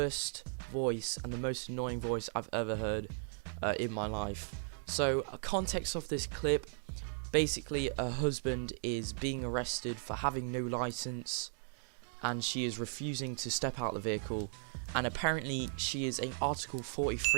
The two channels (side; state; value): left; silent; digital silence